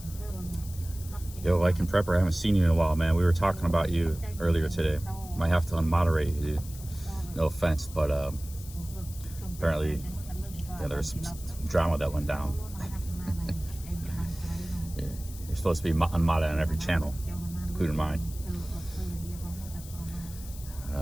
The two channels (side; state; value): left; noise; hiss, 16 dB below the sound